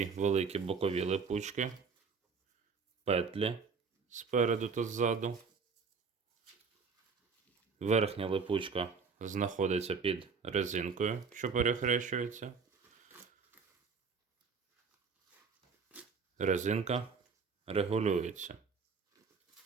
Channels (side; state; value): left; quieter; 5.3 dB